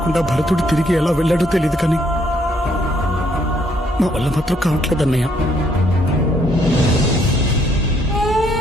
భరతుడు తిరిగి ఎలా వెళ్ళాడో తెలియదు, కానీ మా వల్ల మాత్రం కావట్లేదన్నయ్య.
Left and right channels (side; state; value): both; normal; correlation 0.69